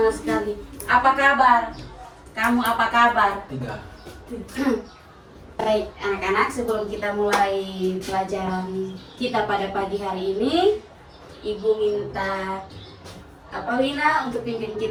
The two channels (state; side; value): identical; both; correlation 1.00